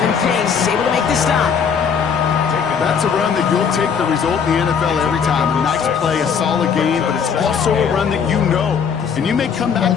pace, able to make the stop. That's a run that you'll take the result in the NFL every time. A nice play, a solid game, but it's also a run that you know. And you may come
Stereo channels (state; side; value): quieter; right; 6.7 dB